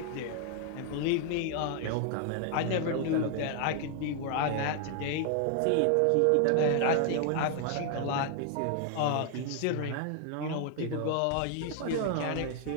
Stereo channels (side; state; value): both; different; correlation 0.00